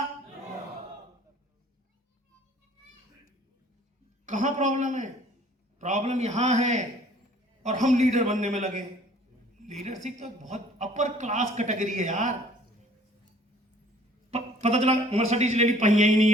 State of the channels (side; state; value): both; normal; correlation 0.55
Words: कहां प्रॉब्लम है? प्रॉब्लम यहां है और हम लीडर बनने में लगे। लीडरशिप तो बहुत अपर क्लास कैटेगरी है यार। पता चला मर्सिडीज ले ली, पहिया ही नहीं